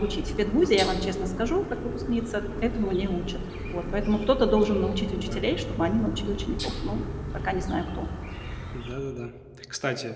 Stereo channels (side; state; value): both; identical; correlation 1.00